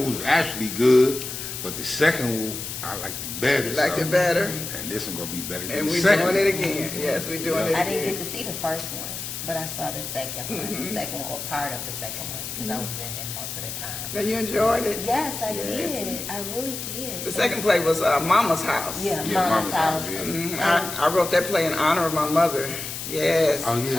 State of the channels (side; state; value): left; noise; hiss, 7 dB below the sound